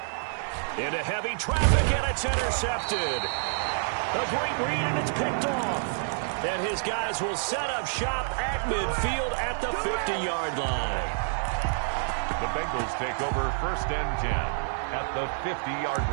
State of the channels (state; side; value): silent; left; 59 dB below the other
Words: Into heavy traffic, and it's intercepted. A great read, and it's picked off. And his guys will set up shop at midfield at the 50-yard line. The Bengals take over 1st and 10 at the 50-yard